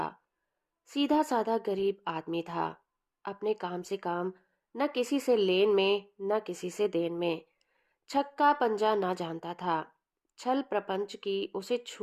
सीधा साधा गरीब आदमी था। अपने काम से काम, न किसी से लेन में न किसी से देन में। छक्का पंजा ना जानता था। छल प्रपंच की उसे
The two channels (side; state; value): both; identical; correlation 1.00